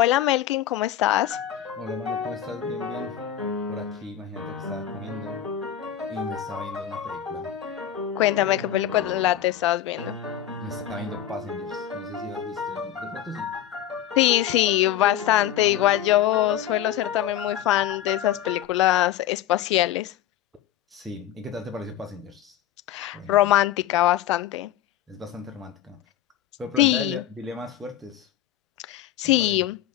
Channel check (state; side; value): quieter; right; 11.2 dB